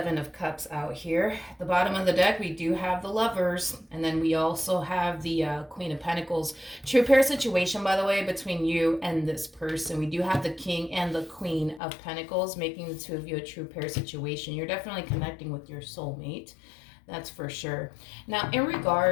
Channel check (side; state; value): right; drops out; at 11.8 s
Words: of Cups out here. At the bottom of the deck, we do have the Lovers, and then we also have the Queen of Pentacles. True pair situation, by the way, between you and this person. We do have the King and the Queen of Pentacles, making the two of you a true pair situation. You're definitely connecting with your soulmate. That's for sure. Now, in